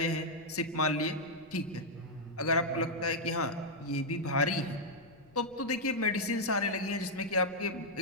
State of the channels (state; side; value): noise; left; rumble, 27 dB below the sound